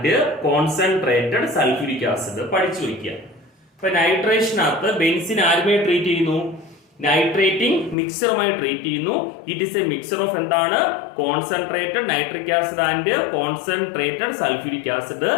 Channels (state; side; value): drops out; right; at 8.0 s